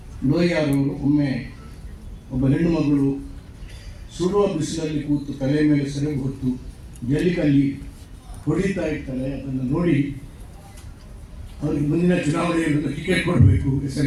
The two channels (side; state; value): both; identical; correlation 1.00